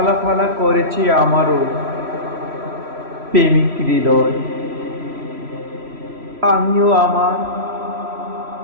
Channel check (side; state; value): left; late; 3.1 ms